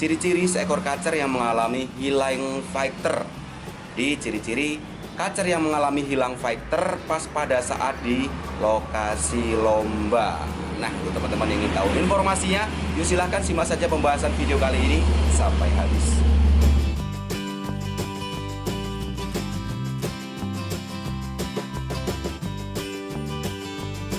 ciri-ciri seekor kacer yang mengalami hilang fighter. Di ciri-ciri kacer yang mengalami hilang fighter pas pada saat di lokasi lomba. Nah, untuk teman-teman yang ingin tahu informasinya, yuk silahkan simak saja pembahasan video kali ini sampai habis.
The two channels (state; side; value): identical; both; correlation 1.00